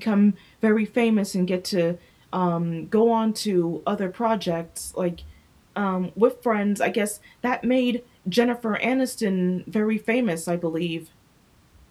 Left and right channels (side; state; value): both; identical; correlation 1.00